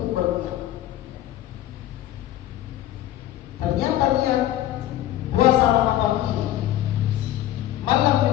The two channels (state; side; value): quieter; right; 13.4 dB